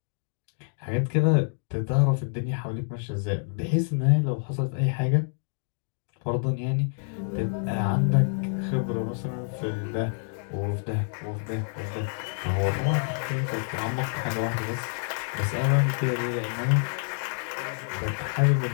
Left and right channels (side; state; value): right; silent; digital silence